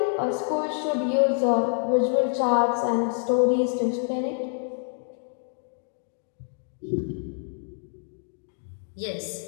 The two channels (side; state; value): right; silent; 60 dB below the other